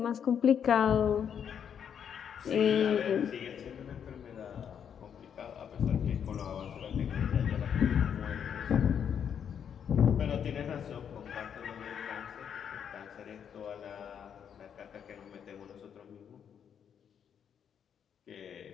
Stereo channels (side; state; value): right; quieter; 8.1 dB